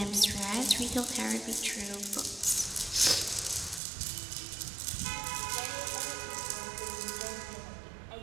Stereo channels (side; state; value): left; drops out; at 3.8 s